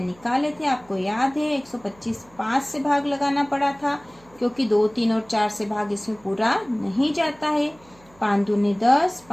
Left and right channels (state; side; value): noise; right; hum, 28 dB below the sound